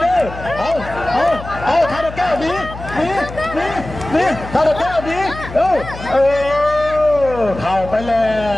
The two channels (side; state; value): left; noise; hum, 12 dB below the sound